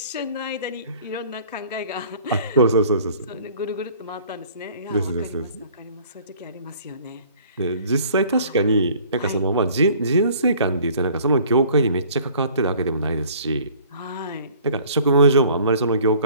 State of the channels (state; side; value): inverted; both; correlation -0.53